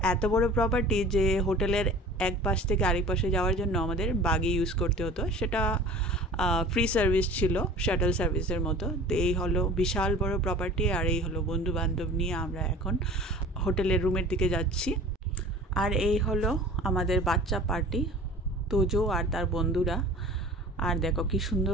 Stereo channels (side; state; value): both; normal; correlation 0.42